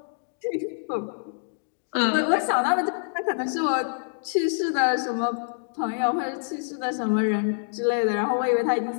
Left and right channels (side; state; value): right; silent; digital silence